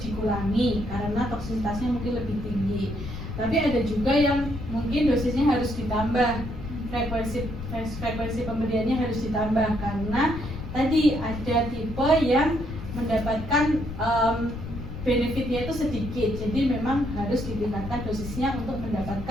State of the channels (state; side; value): noise; left; rumble, 8 dB below the sound